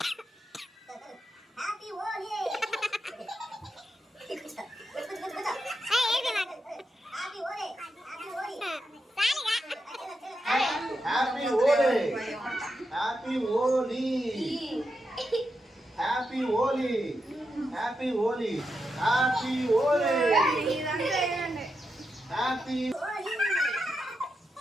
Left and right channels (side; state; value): both; normal; correlation 0.86